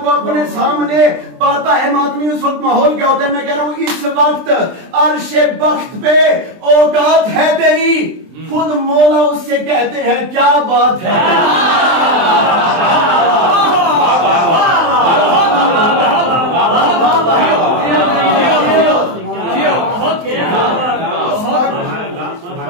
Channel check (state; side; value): late; left; 23 ms